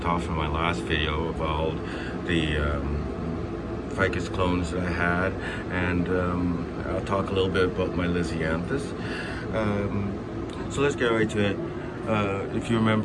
off in my last video about the ficus clones that I had, and I'll talk a little bit about my lisianthus. So let's get right to it. If you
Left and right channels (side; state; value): both; identical; correlation 1.00